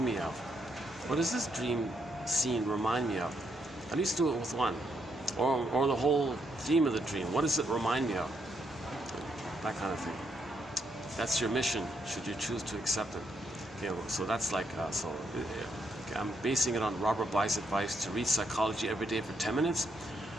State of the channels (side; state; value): both; normal; correlation 0.77